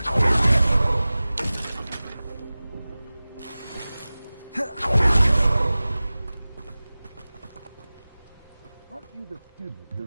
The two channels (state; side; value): inverted; both; correlation -0.98